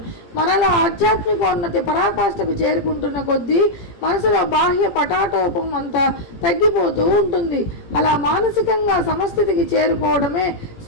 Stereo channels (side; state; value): right; late; 17 ms